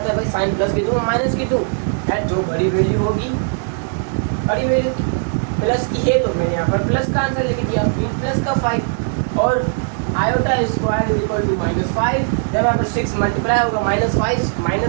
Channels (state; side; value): silent; left; digital silence